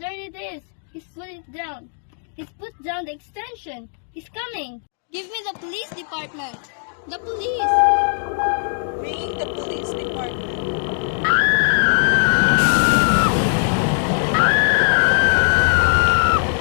it is. He's put it down. He's put down the extension. He's coming. Give me the police department. The police. Ringing the police department.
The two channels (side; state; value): right; silent; 66 dB below the other